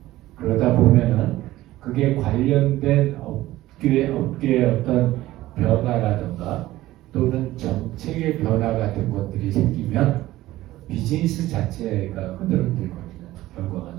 그러다 보면은 그게 관련된 업계의 어떤 변화라든가 또는 정책의 변화 같은 것들이 생기면 비즈니스 자체가 흔들흔들거리는 결과가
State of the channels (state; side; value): quieter; left; 16.1 dB